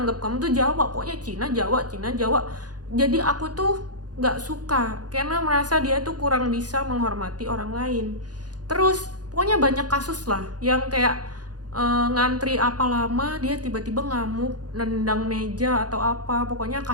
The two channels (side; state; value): left; late; 0.69 ms